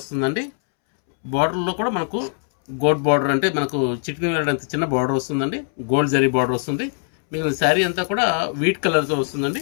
బార్డర్లో కూడా మనకు గోల్డ్ బార్డర్, అంటే మనకు చికెన్ వేయడంత చిన్న బార్డర్ వస్తుందండి. గోల్డ్ జరీ బార్డర్ వస్తుంది. మిగిలిన శారీ అంతా కూడా వీట్ కలర్తో వస్తుందండి.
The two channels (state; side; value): silent; right; 65 dB below the other